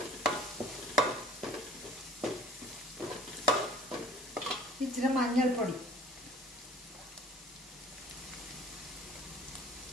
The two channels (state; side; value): normal; both; correlation 0.49